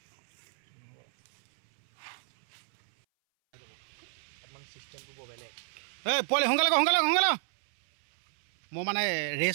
মানে চিষ্টেমটো বৰ বেলেগ এই পোৱালি সোনকালে মই মানে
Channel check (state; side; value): silent; left; 57 dB below the other